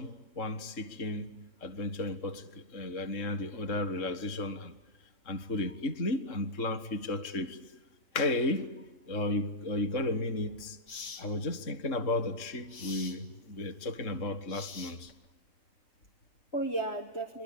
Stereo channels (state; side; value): late; right; 3.6 ms